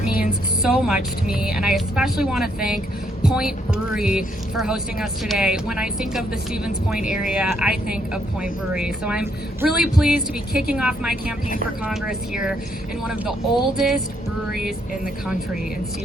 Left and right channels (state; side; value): normal; both; correlation 0.72